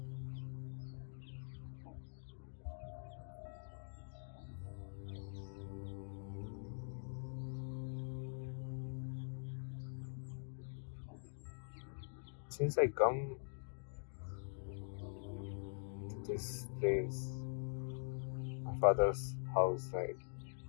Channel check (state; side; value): silent; right; digital silence